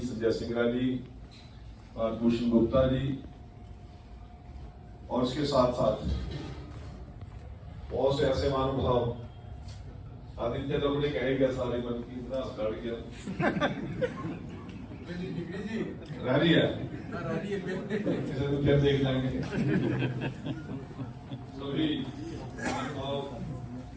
संजय सिंगरा जी और भूषण गुप्ता जी, और उसके साथ साथ बहुत से ऐसे महानुभाव, आदित्य तो मुझे कहेगा सारे मन की इतना काट गया रह रही है, इसे तो फिर देख लेंगे सभी महानुभाव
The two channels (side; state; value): both; identical; correlation 1.00